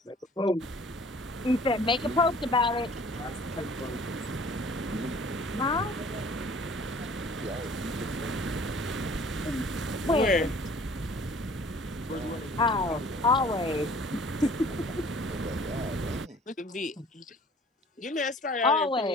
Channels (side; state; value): both; normal; correlation 0.51